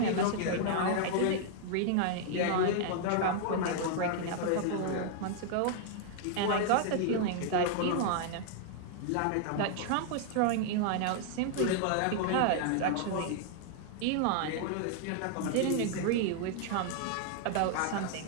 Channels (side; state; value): both; different; correlation 0.00